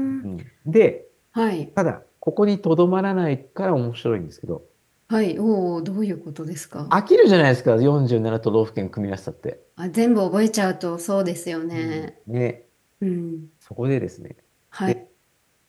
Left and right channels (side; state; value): both; identical; correlation 1.00